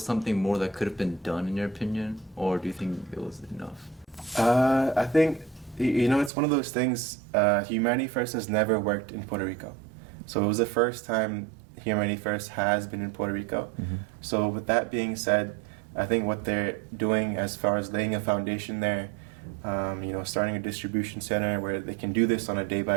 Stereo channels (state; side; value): drops out; left; at 6.3 s